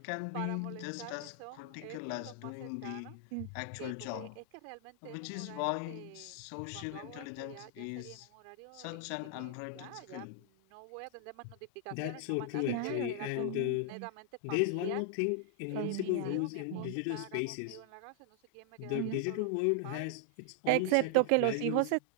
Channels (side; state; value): both; different; correlation 0.00